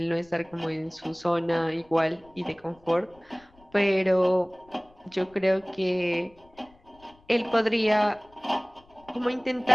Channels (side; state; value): left; noise; rumble, 29 dB below the sound